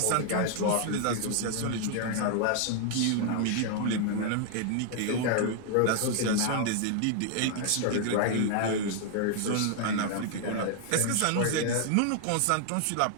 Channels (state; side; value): different; both; correlation 0.00